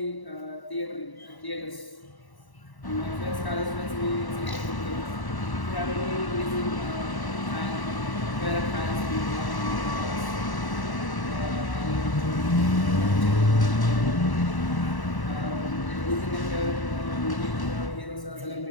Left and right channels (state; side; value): late; right; 1.1 ms